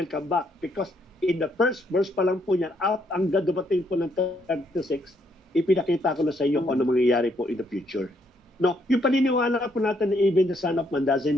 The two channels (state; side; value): normal; both; correlation 0.72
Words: come back because in the first verse pa lang po niyan, at ang dumating po ng 36, ipinakita ko na sa inyo kung ano mangyayari po in the future. No, yung paniniwala po natin na even the Son of Man doesn't